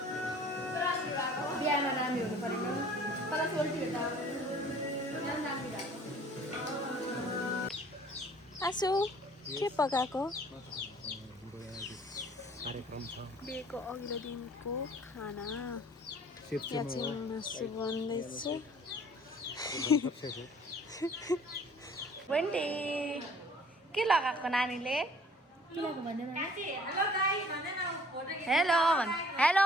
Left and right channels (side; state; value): both; normal; correlation 0.53